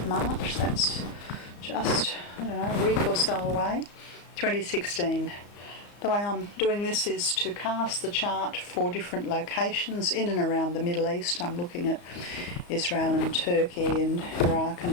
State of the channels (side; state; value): right; late; 34 ms